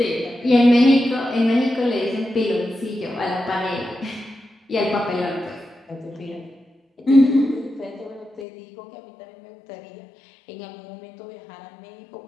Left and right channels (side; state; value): right; drops out; at 8.5 s